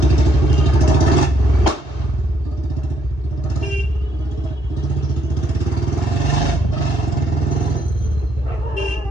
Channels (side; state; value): right; late; 2.1 ms